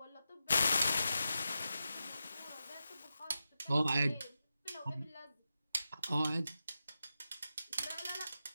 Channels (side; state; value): both; inverted; correlation -0.90